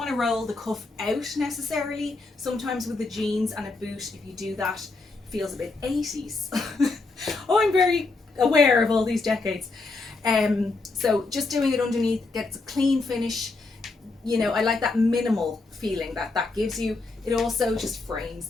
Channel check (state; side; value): quieter; right; 3.5 dB